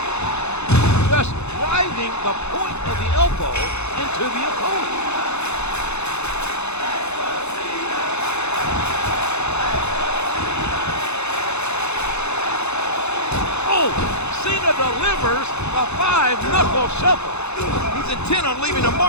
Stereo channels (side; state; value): right; late; 0.81 ms